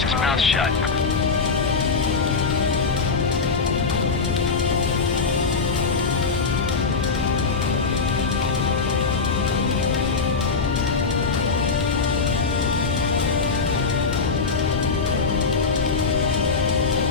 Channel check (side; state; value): right; quieter; 4.7 dB